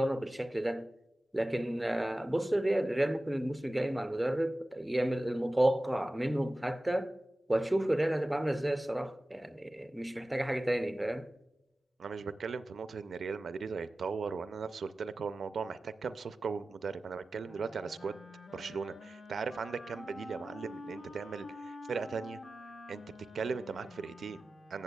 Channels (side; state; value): both; normal; correlation 0.96